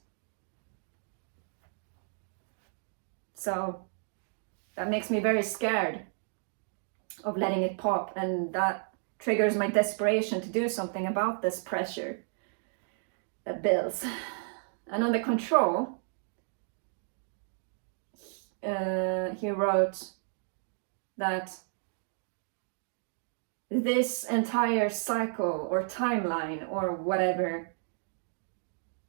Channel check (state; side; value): silent; left; 56 dB below the other